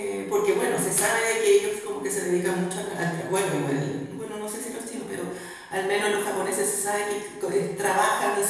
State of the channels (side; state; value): both; identical; correlation 1.00